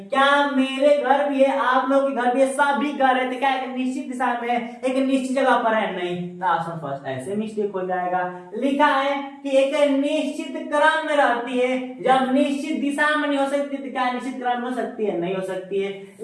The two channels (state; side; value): identical; both; correlation 1.00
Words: क्या मेरे घर भी है, आप लोग के घर भी है, सभी घर है, तो क्या एक निश्चित दिशा में, एक निश्चित जगह पर है? नहीं। तो ऑप्शन फर्स्ट ऐसे मिस्टेक हो जाएगा। लिखा है कि एक निश्चित क्रम में रहती है। जब निश्चित दिशा में नहीं हो सकती तो क्या निश्चित क्रम में हो सकती है? नहीं हो सकती है।